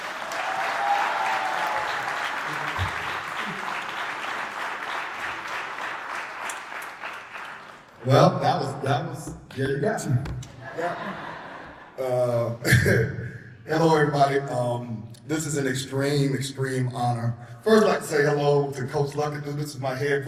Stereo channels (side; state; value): both; identical; correlation 1.00